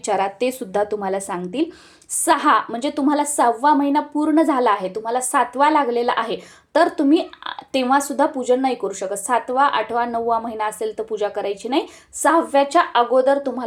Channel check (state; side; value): identical; both; correlation 1.00